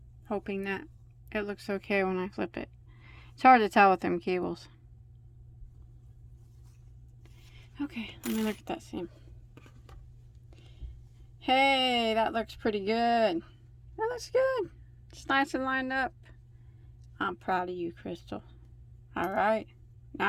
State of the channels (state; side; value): identical; both; correlation 1.00